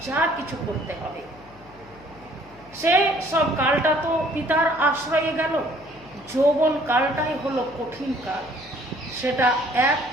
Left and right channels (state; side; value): noise; left; hum, 23 dB below the sound